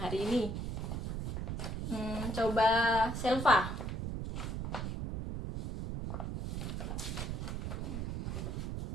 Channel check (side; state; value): right; noise; rumble, 3 dB below the sound